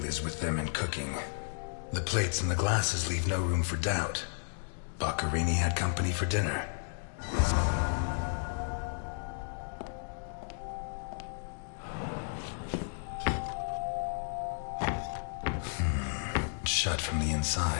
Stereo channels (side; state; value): right; silent; digital silence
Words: is with them and cooking. The plates and the glasses leave no room for doubt. Boccarini had company for dinner. Shut from the